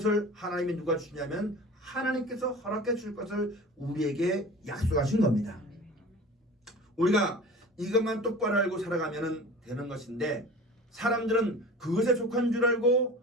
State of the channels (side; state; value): both; normal; correlation 0.38